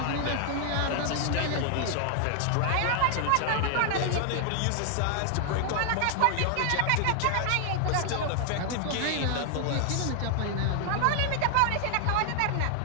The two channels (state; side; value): different; both; correlation 0.00